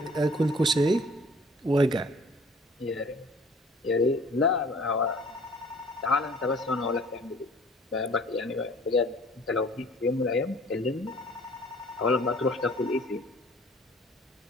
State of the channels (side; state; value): both; normal; correlation 0.52